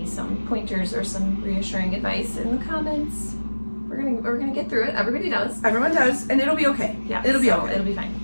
some pointers or some reassuring advice in the comments. We're gonna get through it. Everybody does. Everyone does, and it'll be okay. Yeah, it'll be okay. It'll be fine.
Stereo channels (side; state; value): both; inverted; correlation -1.00